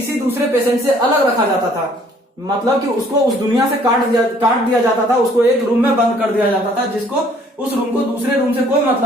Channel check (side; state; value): both; normal; correlation 0.59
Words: दूसरे पेशेंट से अलग रखा जाता था, मतलब कि उसको उस दुनिया से काट दिया जाता था, उसको एक रूम में बंद कर दिया जाता था, जिसको उस रूम को दूसरे रूम से कोई